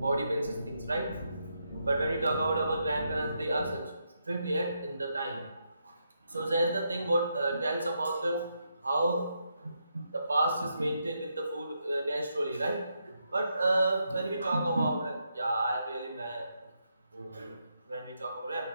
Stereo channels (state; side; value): inverted; both; correlation -0.81